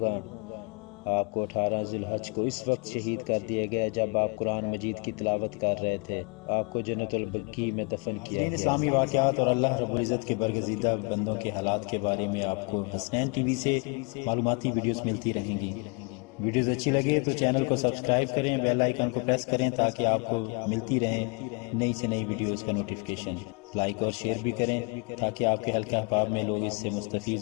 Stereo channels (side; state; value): right; quieter; 32.9 dB